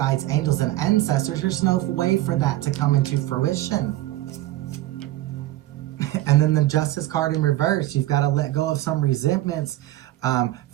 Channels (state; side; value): quieter; left; 15.9 dB